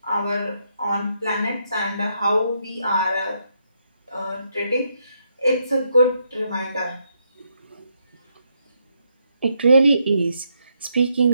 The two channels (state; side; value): inverted; both; correlation -0.77